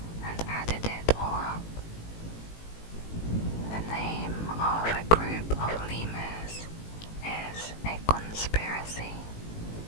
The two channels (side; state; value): right; late; 18 ms